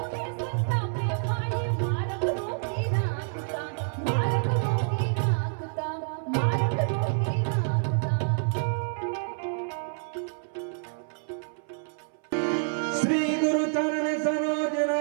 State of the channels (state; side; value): silent; left; 58 dB below the other